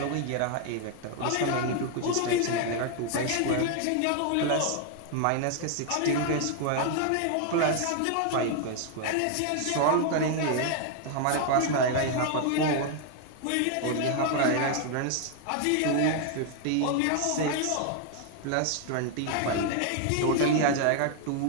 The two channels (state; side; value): different; both; correlation 0.00